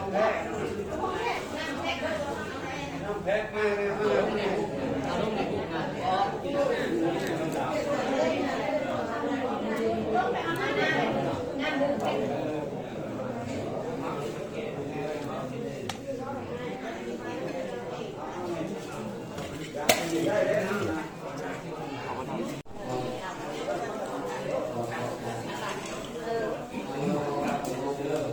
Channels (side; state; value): both; identical; correlation 1.00